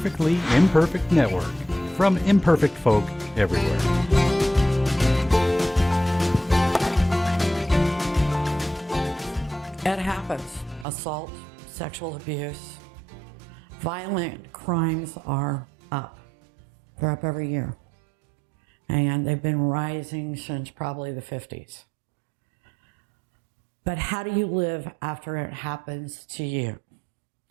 Imperfect Network, from imperfect folk everywhere. It happens. Assault, sexual abuse, violent crimes are up. They're up every year. And they've been rising since probably the 50s. But how do you live after it happens to you?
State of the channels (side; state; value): left; drops out; at 10.9 s